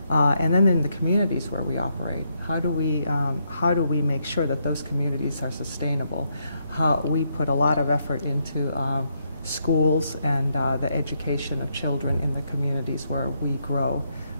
And then in the communities where we operate, how do we make sure that those communities are sustainable? We put a lot of effort into schools and the education of children in the communities where we grow.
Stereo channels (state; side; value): inverted; both; correlation -0.78